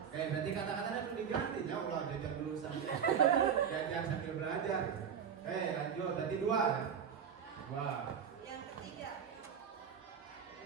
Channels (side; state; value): left; quieter; 7.6 dB